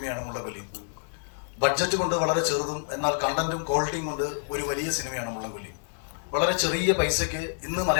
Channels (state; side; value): silent; right; digital silence